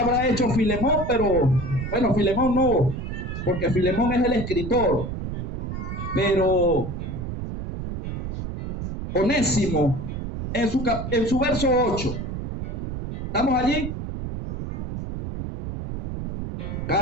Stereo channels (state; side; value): noise; right; rumble, 6 dB below the sound